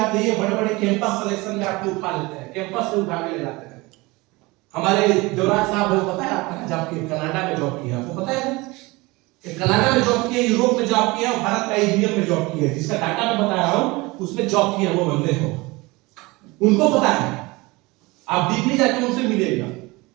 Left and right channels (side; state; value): left; quieter; 23.1 dB